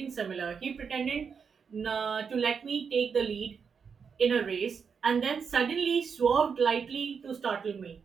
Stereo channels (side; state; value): left; quieter; 6.2 dB